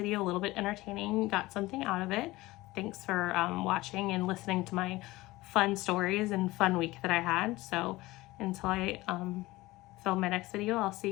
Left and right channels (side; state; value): right; quieter; 19.3 dB